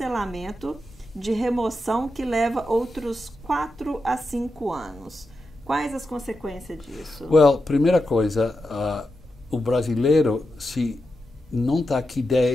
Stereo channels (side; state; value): both; normal; correlation 0.88